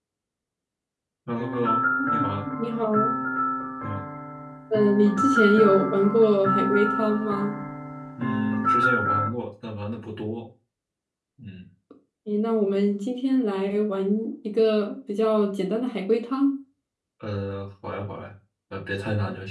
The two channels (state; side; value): identical; both; correlation 1.00